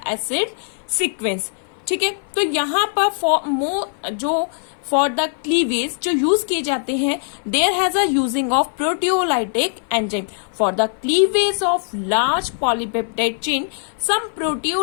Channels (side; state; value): right; silent; 58 dB below the other